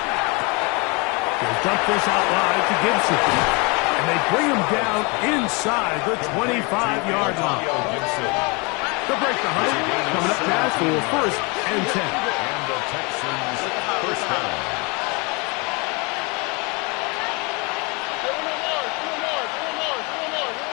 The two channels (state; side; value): quieter; right; 29.5 dB